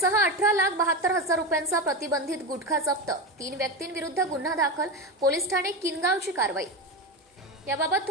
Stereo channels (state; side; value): normal; both; correlation 0.18